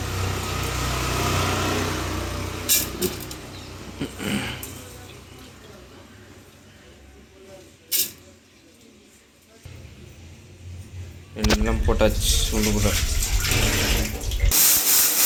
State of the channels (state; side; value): identical; both; correlation 1.00